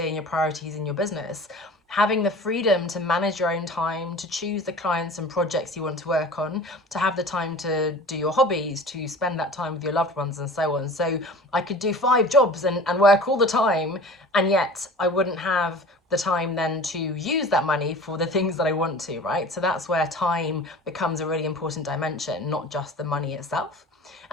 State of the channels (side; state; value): both; normal; correlation 0.40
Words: and your priorities in your business. Having the freedom to manage your own time, to choose the clients and projects you want to work on, to have the time to do your hobbies, to spend that time with your loved ones and so on. So I could do 5 jobs and work all the time, and yet I wouldn't have the time then to use that money for the things that I want to, right? So that's where time becomes a really important dimension, not just the money itself.